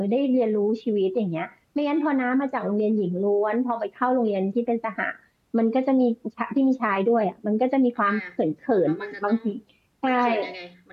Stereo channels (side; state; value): both; identical; correlation 1.00